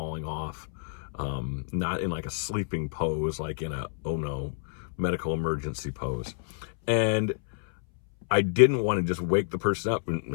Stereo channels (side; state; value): right; silent; 59 dB below the other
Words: off, not in like a sleeping pose, like in a, oh no, medical emergency pose. And I didn't want to just wake the person up, and